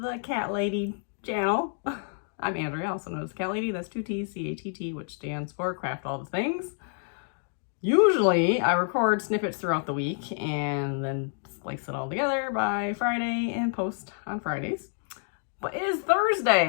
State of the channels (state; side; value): silent; right; digital silence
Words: the Cat Lady channel. I'm Andrea, also known as Cat Lady. That's 2 T's, CATT, which stands for Craft All the Things. Usually I record snippets throughout the week and then splice it all together by Friday and post on Fridays. But it is